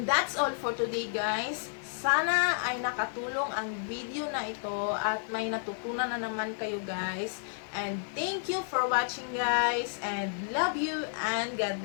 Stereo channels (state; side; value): silent; right; digital silence